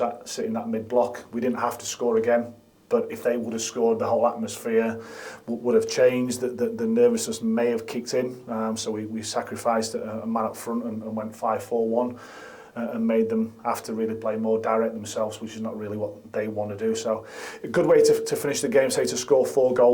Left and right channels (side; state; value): both; identical; correlation 1.00